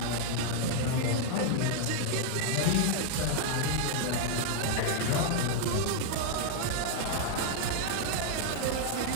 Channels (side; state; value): both; different; correlation 0.00